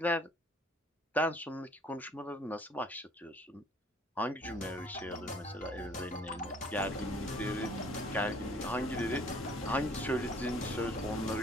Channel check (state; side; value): normal; both; correlation 0.57